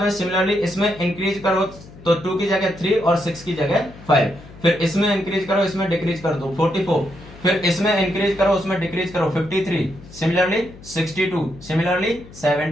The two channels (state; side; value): noise; left; hum, 19 dB below the sound